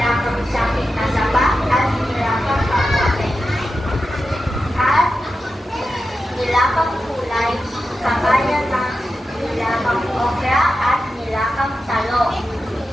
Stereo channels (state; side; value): normal; both; correlation 0.90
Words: sakit na saba at nilagang kamote. At nilagang kulay, kagaya ng nilagang okra at nilagang talong.